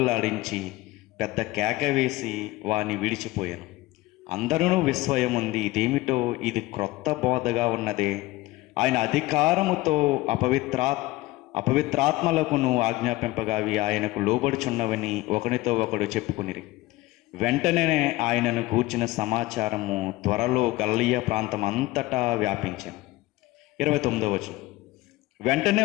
పెద్ద కేక వేసి వాని విడిచిపోయాను. అందరూ విస్మయముంది, ఇదేమిటో, ఇది క్రొత్త బోధగా ఉన్నదే. ఆయన అధికారముతో అపవిత్రాత్మలకును ఆజ్ఞాపింపగా అవి ఆయనకు లోబడుచున్నవని ఒకనితో ఒకడు చెప్పుకునిరి. వెంటనే ఆయనను గూర్చిన సమాచారము త్వరలో గలిలయ ప్రాంతం అంతటా వ్యాపించాను. 29వ వచనం. వెంటనే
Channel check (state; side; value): quieter; right; 19.0 dB